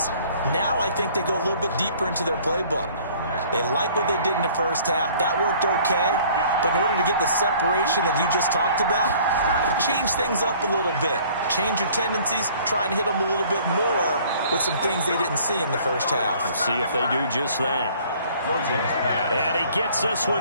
now I think they go a little bit deeper into their playbook. They like what they did in the 1st half. That worked okay. But in order to get the separation that you just talked about, change things up a little bit. Change your tendencies. Try and hit them a little bit more with some things they didn't see in the 1st half. We'll see if they do just that. And he gets this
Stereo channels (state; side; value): inverted; both; correlation -0.54